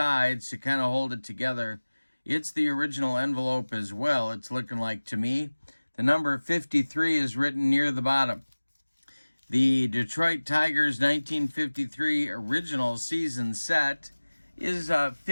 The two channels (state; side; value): inverted; both; correlation -1.00